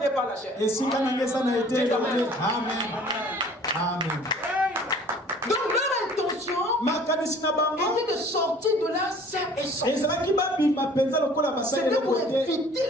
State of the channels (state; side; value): normal; both; correlation 0.51